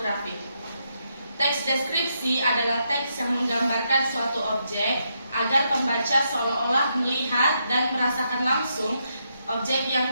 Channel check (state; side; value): inverted; both; correlation -0.80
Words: Teks deskripsi adalah teks yang menggambarkan suatu objek agar pembaca seolah-olah melihat dan merasakan langsung objek yang